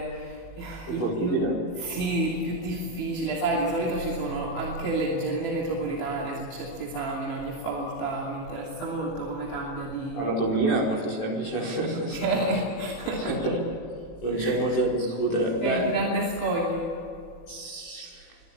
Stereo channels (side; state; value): right; late; 18 ms